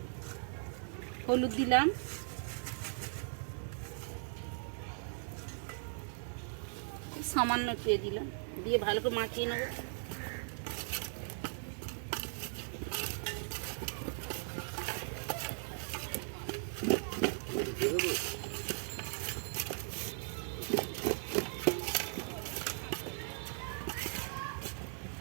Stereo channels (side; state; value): left; silent; digital silence